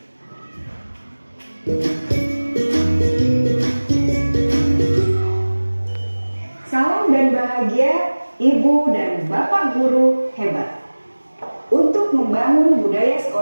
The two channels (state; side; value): inverted; both; correlation -1.00